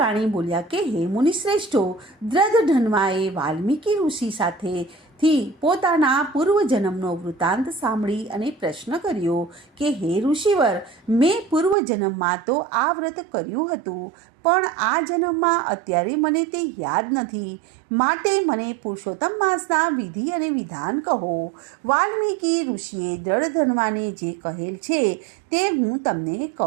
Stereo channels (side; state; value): left; drops out; at 11.8 s